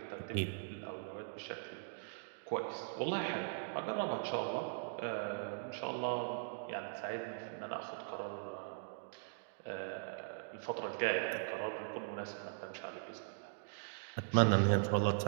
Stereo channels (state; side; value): silent; left; digital silence